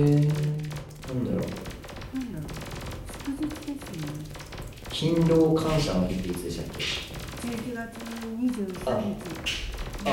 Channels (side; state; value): both; identical; correlation 1.00